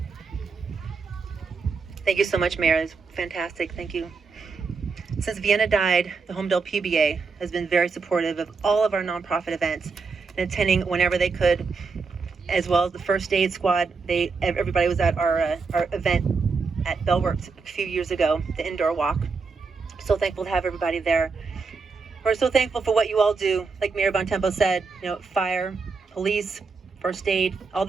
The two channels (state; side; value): quieter; left; 4.7 dB